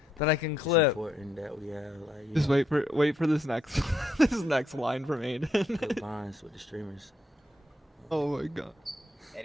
that I can clip. It's important that we have like. Just wait for this next this next line from Aiden. Good lines with the streamers. Oh my god.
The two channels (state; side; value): normal; both; correlation 0.76